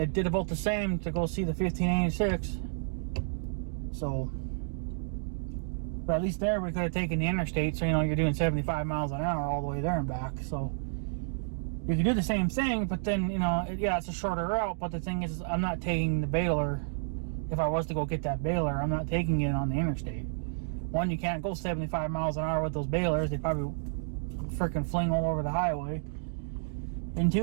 about the same to go see the 1586. So, but at least there we could have taken the interstate, so you know you're doing 75 miles an hour all the way there and back. So you can do the same thing, but then you know, yeah, it's a shorter route. But the thing is, I'm not taking the baler. If I was to go get that baler, I'm not taking it on the interstate. One, you can't go 75 miles an hour with those balers. They probably freaking fling all over the highway. And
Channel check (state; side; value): silent; left; digital silence